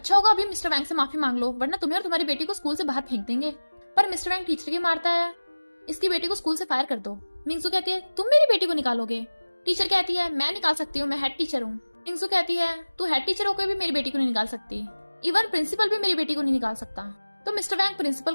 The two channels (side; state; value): both; inverted; correlation -1.00